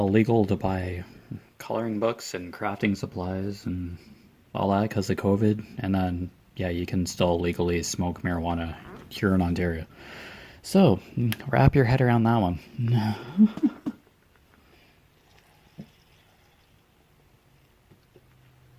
to buy coloring books and crafting supplies and all that because of COVID. And then, yeah, you can still legally smoke marijuana here in Ontario. So, wrap your head around that one.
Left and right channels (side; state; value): both; identical; correlation 1.00